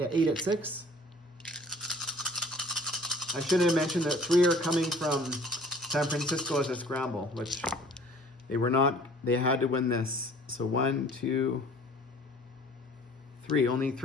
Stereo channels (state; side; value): normal; both; correlation 0.51